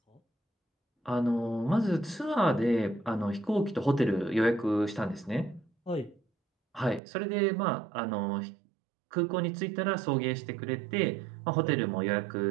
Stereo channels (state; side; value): drops out; left; at 7.0 s